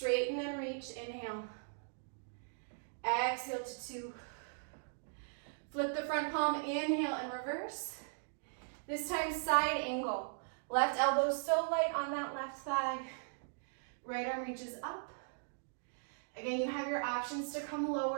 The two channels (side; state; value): left; silent; digital silence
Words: and reach. Inhale. Exhale to 2. Flip the front palm. Inhale and reverse. This time side angle. Left elbow so light on that left thigh. Right arm reaches up. Again, you have your options to come